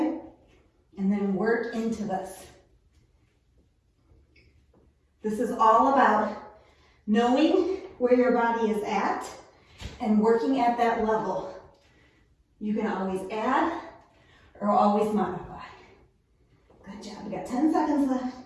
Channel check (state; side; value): identical; both; correlation 1.00